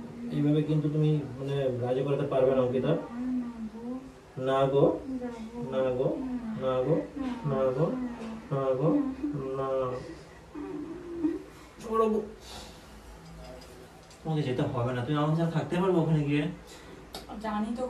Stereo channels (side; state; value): both; identical; correlation 1.00